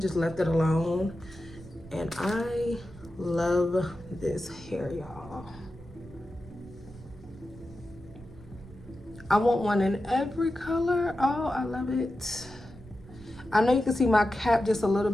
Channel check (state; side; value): noise; right; rumble, 20 dB below the sound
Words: left it alone. And I love this hair, y'all. I want one in every color. Oh, I love it. I know you can see my cap just a little